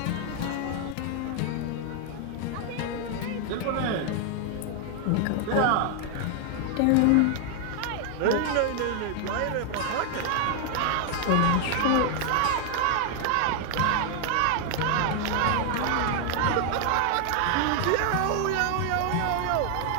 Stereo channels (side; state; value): both; different; correlation 0.00